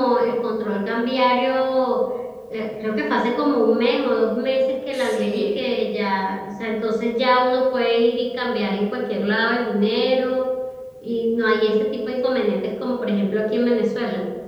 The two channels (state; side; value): identical; both; correlation 1.00